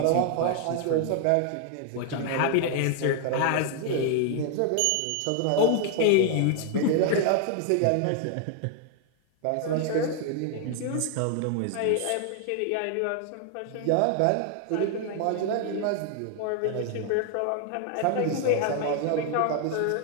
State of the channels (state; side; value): different; both; correlation 0.00